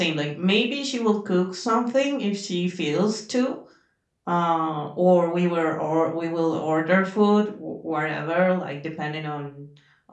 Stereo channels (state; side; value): identical; both; correlation 1.00